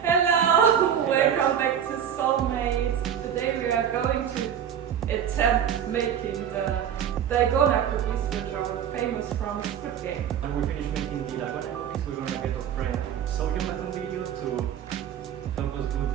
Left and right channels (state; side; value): quieter; left; 8.9 dB